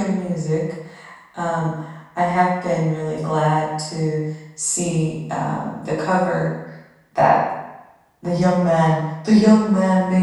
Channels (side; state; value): both; identical; correlation 1.00